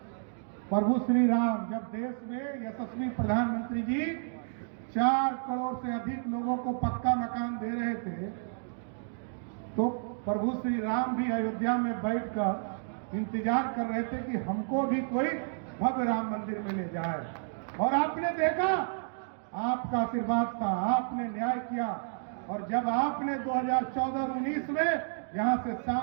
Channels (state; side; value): silent; left; digital silence